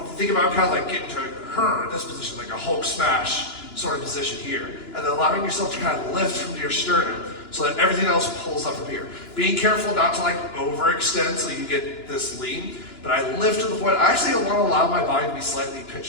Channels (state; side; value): late; right; 2.9 ms